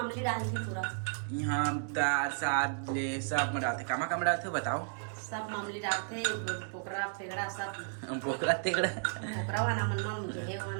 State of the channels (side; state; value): left; silent; digital silence